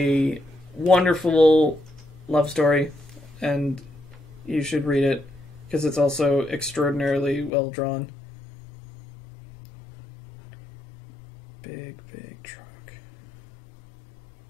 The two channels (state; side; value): drops out; right; at 7.5 s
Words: wonderful love story and you should read it because it's also extraordinarily well drawn. Big Truck.